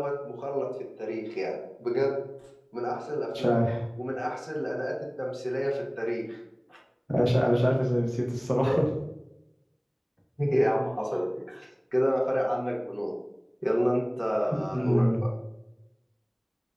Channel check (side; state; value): both; identical; correlation 1.00